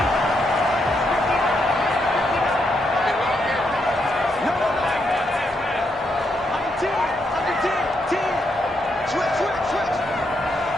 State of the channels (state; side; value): normal; both; correlation 0.79